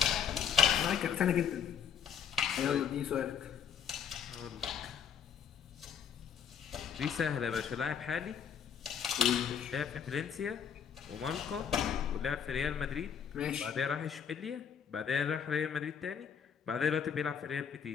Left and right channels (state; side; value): quieter; right; 7.9 dB